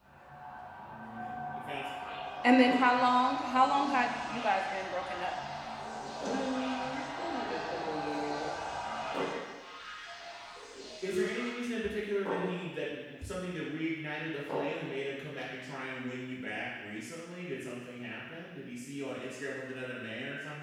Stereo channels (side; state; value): both; identical; correlation 1.00